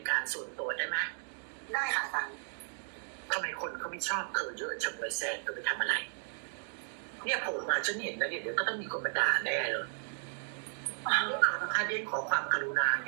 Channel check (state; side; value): silent; left; 55 dB below the other